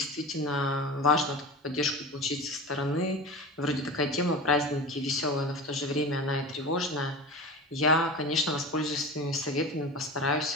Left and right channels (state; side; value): normal; both; correlation 0.30